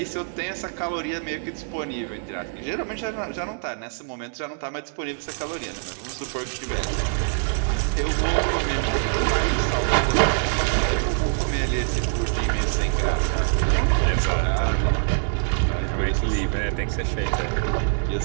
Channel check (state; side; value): silent; left; digital silence